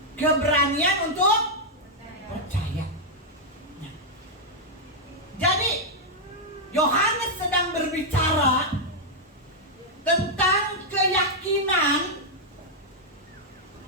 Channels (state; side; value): normal; both; correlation -0.04